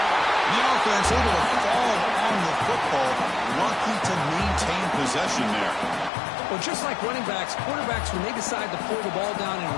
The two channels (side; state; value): right; drops out; at 6.1 s